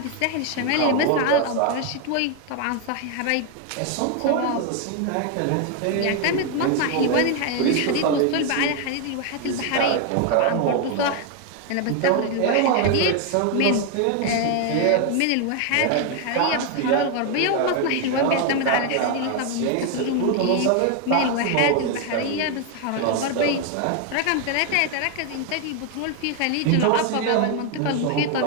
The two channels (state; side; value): different; both; correlation 0.01